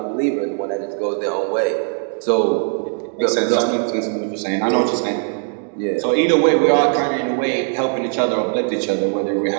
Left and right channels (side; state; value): left; silent; 56 dB below the other